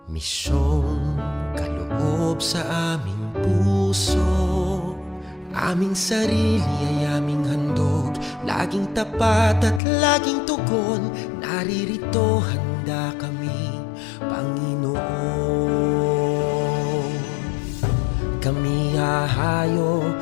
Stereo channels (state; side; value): drops out; right; at 9.8 s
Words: misyong kaloob sa aming puso. Aming sarili ay aming handog, laging tapat at laging tugon. Naririto handa kami, Panginoon. Kami hahayo